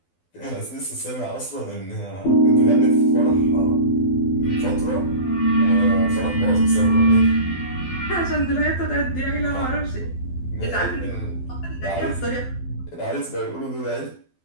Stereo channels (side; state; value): right; late; 12 ms